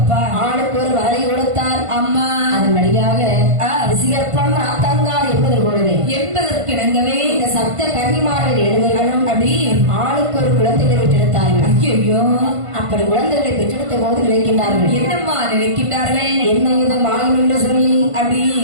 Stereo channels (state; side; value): late; left; 1.5 ms